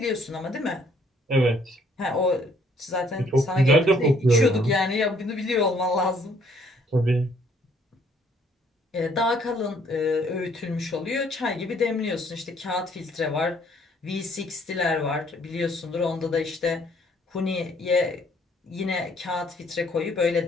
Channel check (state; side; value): normal; both; correlation 0.64